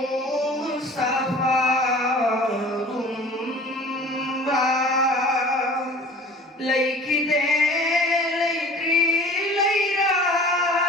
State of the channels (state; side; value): normal; both; correlation 0.45